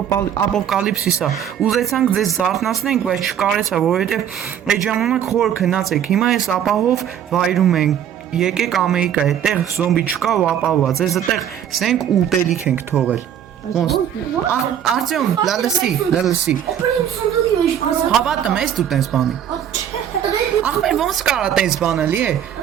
ապոկալիպսիս է։ Ուզեցանք ձեզ զարթնացնենք, բայց չկարեցա, որովհետև այդ ժամանակ խոր քնած եք։ Հիմա ես ապահով վայրում ենք։ Եկեք Ամերիկա, այդտեղ զոմբի չկա ու ապահովված։ Ես այդտեղ սենք ուտելիք ենք թողել։ Ոնց։ Արտյոմ, լալսի։ Հավատում ես դու տես բանի։ Ախպեր ոնց կարա տես բանելի է։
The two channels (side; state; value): left; quieter; 9.5 dB